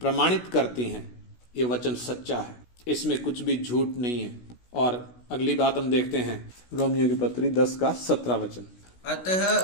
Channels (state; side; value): late; right; 16 ms